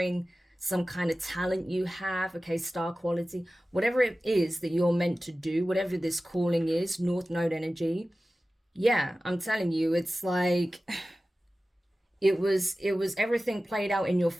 some kind of talent you have, okay, star quality, whatever it is that you're meant to do, whatever this calling is, North Node energy. Yeah, I'm telling you, it's like it was everything played out in your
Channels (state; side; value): normal; both; correlation 0.96